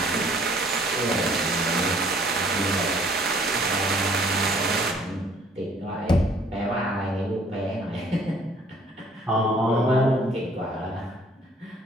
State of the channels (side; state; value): both; normal; correlation 0.59